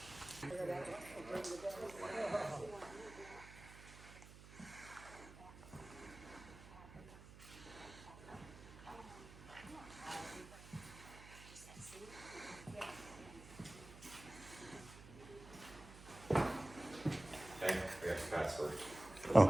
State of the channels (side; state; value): right; noise; hum, 16 dB below the sound